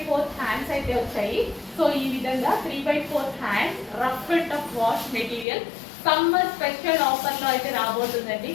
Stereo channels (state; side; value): drops out; right; at 5.5 s